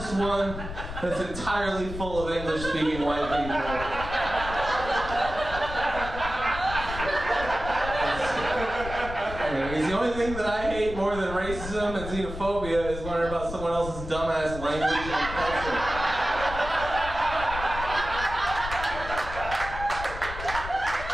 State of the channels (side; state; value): left; noise; rumble, 9 dB below the sound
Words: one that's entirely full of English-speaking white people. Because the only thing that I hate more than racism and xenophobia is learning about someone else's dumbass language and culture.